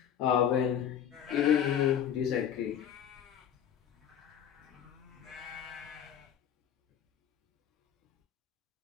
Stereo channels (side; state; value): right; quieter; 9.2 dB